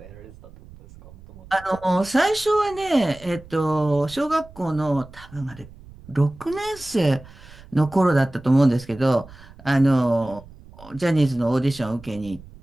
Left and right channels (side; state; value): right; noise; rumble, 20 dB below the sound